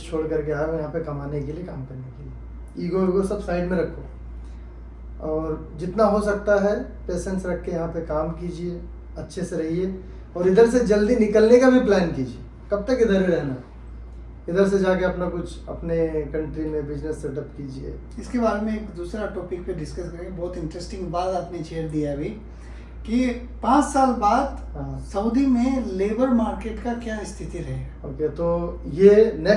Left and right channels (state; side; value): identical; both; correlation 1.00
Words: छोड़ करके आए हो यहाँ पे कमाने के लिए, काम करने के लिए। ईगो सब साइड में रखो और जितना हो सकता है पेशेंस रख के यहाँ पे काम कीजिए, अच्छे से रहिए और इधर से जल्दी निकलने का भी प्लान कीजिए। कब तक इधर ही रहना, इधर से जाके अपना कुछ अपने कंट्री में बिजनेस सेटअप कीजिए। इसके बारे में एक दूसरा टॉपिक पे डिस्कस करेंगे। बहुत इंटरेस्टिंग बात आपने छेड़ दिया अभी कि 5 साल बाद सऊदी में लेबर मार्केट का क्या स्थिति रहेगा। ओके, तो ये